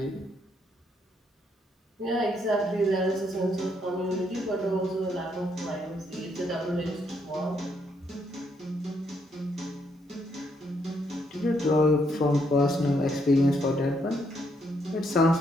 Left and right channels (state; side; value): normal; both; correlation 0.74